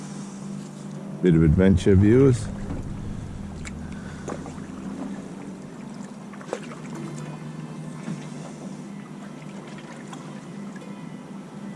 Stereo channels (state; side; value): identical; both; correlation 1.00